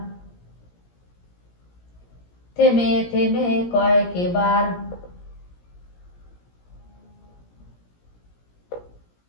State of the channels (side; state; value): right; late; 17 ms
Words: থেমে থেমে কয়েকবার।